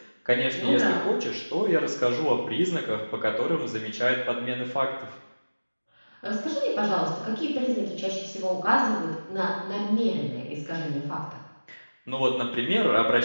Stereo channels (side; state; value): both; inverted; correlation -1.00